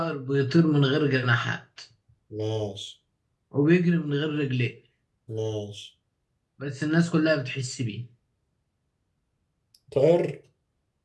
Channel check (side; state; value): both; identical; correlation 1.00